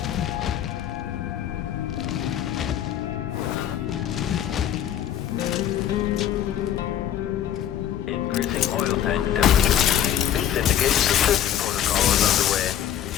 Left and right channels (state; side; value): quieter; right; 10.5 dB